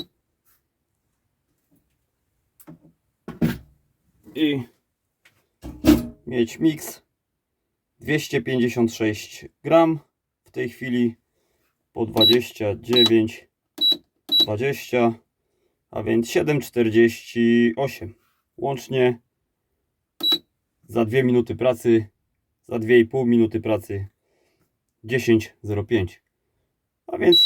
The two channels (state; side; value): identical; both; correlation 1.00